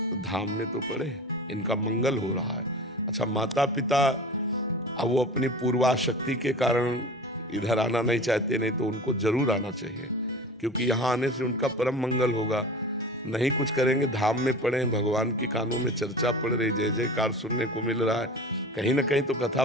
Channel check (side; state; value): both; normal; correlation 0.35